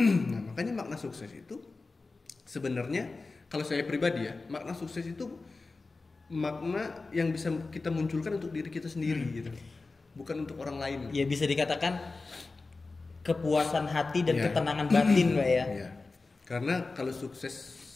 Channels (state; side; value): quieter; right; 3.7 dB